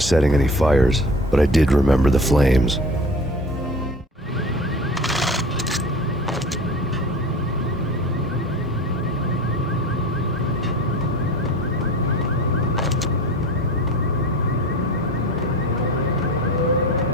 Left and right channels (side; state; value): both; normal; correlation 0.37